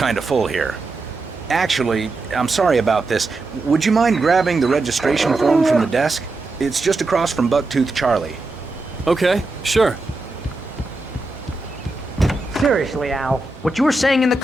of full here. Actually, I'm sorry about this. Would you mind grabbing the registration form from the desk? It's just across from Bucktooth Charlie. Okay, sure. Seriously, Al, what you were saying in the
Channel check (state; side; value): quieter; left; 3.2 dB